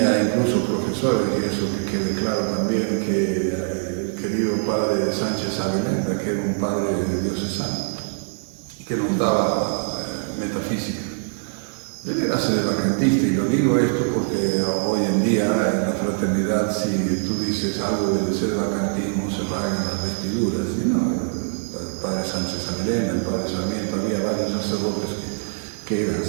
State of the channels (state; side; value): silent; left; 63 dB below the other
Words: incluso profesores, y eso que quede claro también, que el querido padre Sánchez Avelenda, que era un padre diocesano, que nos daba metafísica. Él era sedevacantista, y lo digo esto porque hoy en día en la fraternidad, si tú dices algo del sedevacantismo, se rasgan las vestiduras. Y no, el padre Sánchez Avelenda, el padre Sarmiento, había varios sacerdotes que eran